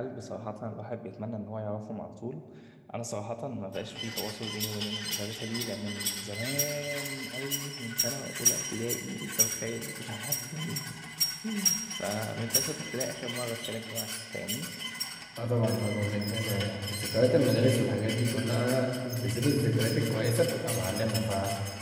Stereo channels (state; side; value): identical; both; correlation 1.00